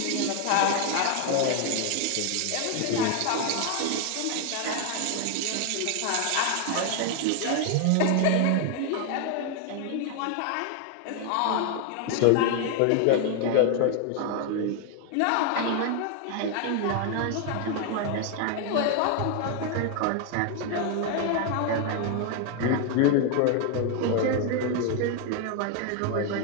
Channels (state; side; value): different; both; correlation 0.01